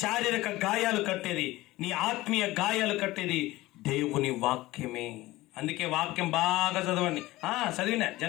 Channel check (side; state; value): right; quieter; 18.3 dB